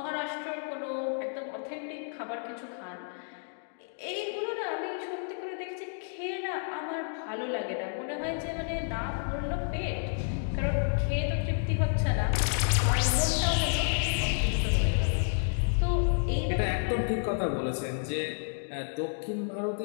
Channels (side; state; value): right; silent; digital silence